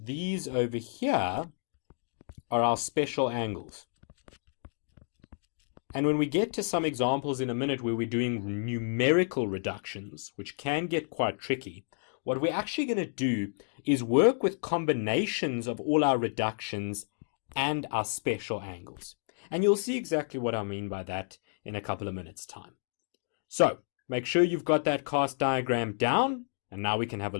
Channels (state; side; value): silent; right; digital silence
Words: these over here are our special angles. And when we get to some examples in a minute where we're doing numerical reductions, which can get quite tricky, what we're actually going to do is work with combinations of all our reductions and our special angles. And you'll see exactly what I mean by that in a couple of minutes' time. So, make sure you've got that cast diagram down, and now we can have a